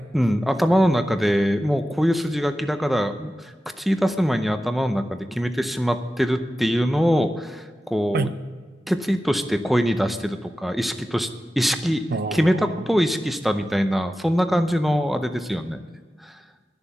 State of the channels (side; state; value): both; normal; correlation 0.93